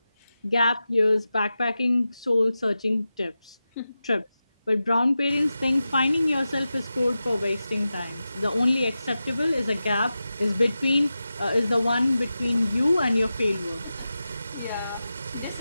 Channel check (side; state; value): both; inverted; correlation -0.93